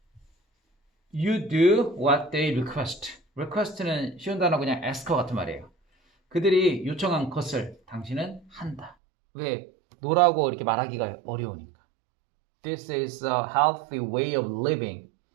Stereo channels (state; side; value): drops out; left; at 9.0 s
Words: you do what they request. request는 쉬운 단어 그냥 ask 같은 말이에요. 그들이 요청한 것을 당신은 한다. 왜? 노라고 이렇게 말하기가 어려우니까. This is a healthy way of living.